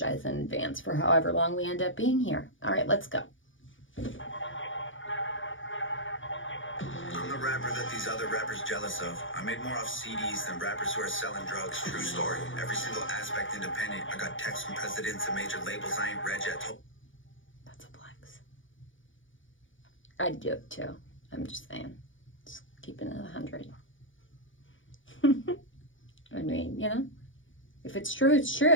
in advance for however long we end up being here. All right, let's go. I'm the rapper that these other rappers jealous of. I made more off CDs than rappers who are selling drugs. True story. Every single aspect independent. I got texts from presidents and major labels I ain't read yet. That's a flex. I'd do it too. I'm just saying. Just keeping it 100. I mean, you know, if it's true, it's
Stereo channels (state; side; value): late; right; 0.57 ms